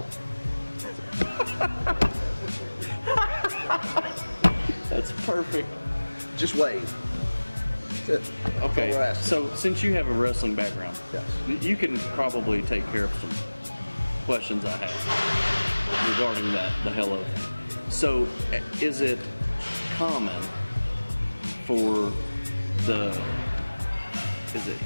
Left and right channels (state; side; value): inverted; both; correlation -1.00